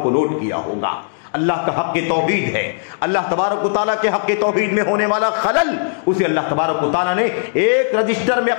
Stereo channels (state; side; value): silent; right; digital silence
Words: کو نوٹ کیا ہوگا۔ اللہ کا حق توحید ہے، اللہ تبارک و تعالیٰ کے حق توحید میں ہونے والا خلل، اسے اللہ تبارک و تعالیٰ نے ایک رجسٹر میں